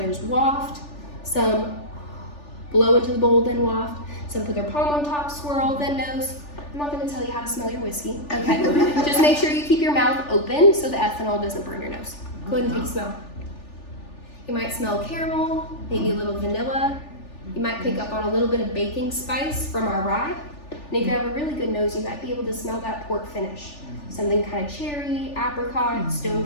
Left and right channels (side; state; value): right; late; 3.4 ms